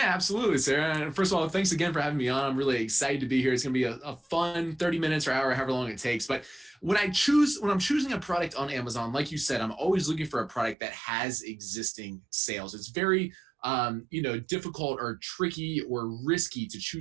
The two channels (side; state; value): left; drops out; at 10.8 s